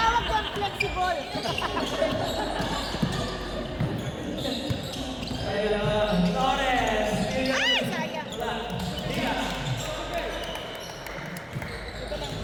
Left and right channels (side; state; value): both; identical; correlation 1.00